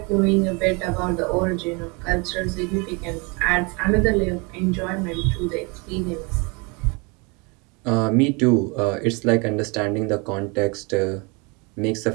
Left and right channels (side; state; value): left; quieter; 29.8 dB